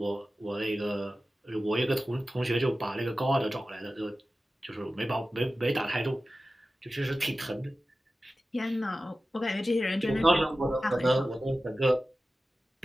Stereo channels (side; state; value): both; normal; correlation 0.95